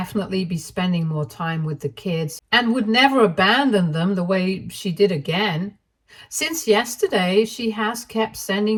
be spending more time with the kids and would never abandon them the way she did again. Since yesterday, she has kept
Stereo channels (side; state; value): both; identical; correlation 1.00